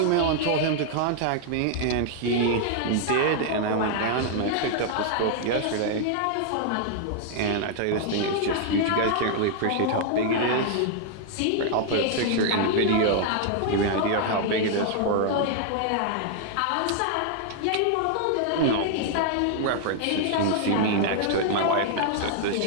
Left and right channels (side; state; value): both; different; correlation -0.01